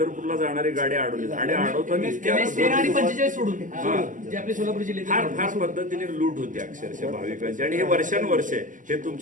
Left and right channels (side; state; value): left; late; 0.38 ms